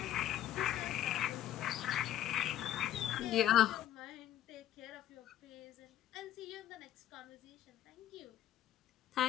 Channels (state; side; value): quieter; right; 12.1 dB